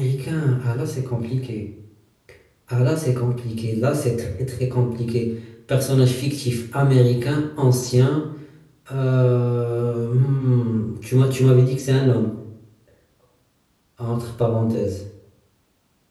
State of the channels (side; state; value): both; identical; correlation 1.00